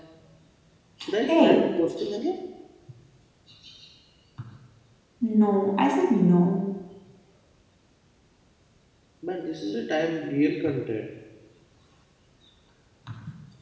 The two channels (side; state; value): both; identical; correlation 1.00